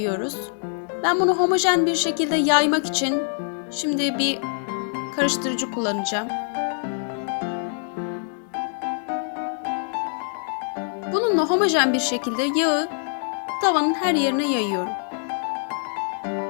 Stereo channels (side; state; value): right; silent; 62 dB below the other